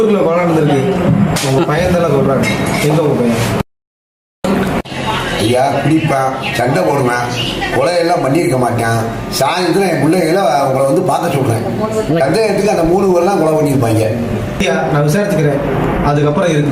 கொலை நடந்திருக்கு. உங்க பையன் தானே சொல்றாங்க. எங்க உங்க பையன்? ஐயா, குடிப்பேன், சண்டை போடுவேன், கொலையெல்லாம் பண்ணியிருக்க மாட்டேன். சாயந்தரம் என் பிள்ளைகளை உங்களை வந்து பார்க்க சொல்கிறேன். சந்தேகத்துக்கு அந்த 3 பேர்லாம் கொலை பண்ணியிருப்பாங்க. ஐயா, நான் விசாரிச்சுக்கிறேன், அதுக்கப்புறம்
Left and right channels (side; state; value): both; identical; correlation 1.00